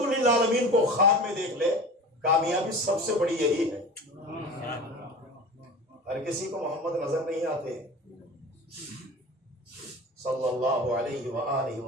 للعالمین کو خواب میں دیکھ لے، کامیابی سب سے بڑی یہی ہے۔ ہر کسی کو محمد نظر نہیں آتے صلی اللہ علیہ وآلہ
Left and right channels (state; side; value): normal; both; correlation 0.35